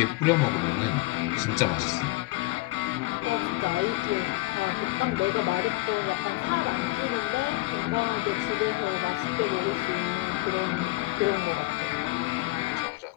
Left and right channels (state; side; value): quieter; right; 20.6 dB